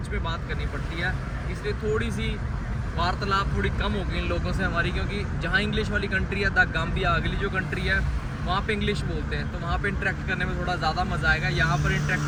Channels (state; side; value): identical; both; correlation 1.00